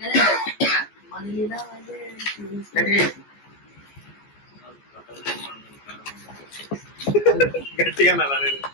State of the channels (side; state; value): right; late; 14 ms